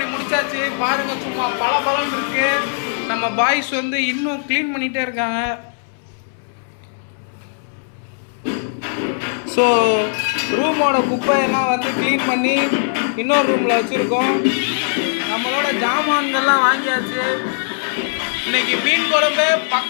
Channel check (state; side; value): silent; right; 65 dB below the other